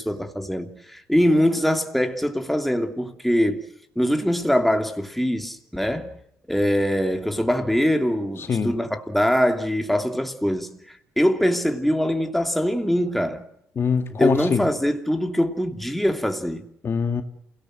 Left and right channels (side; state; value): both; normal; correlation 0.94